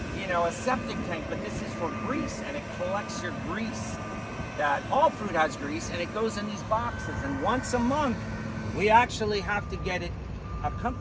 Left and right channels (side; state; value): both; identical; correlation 1.00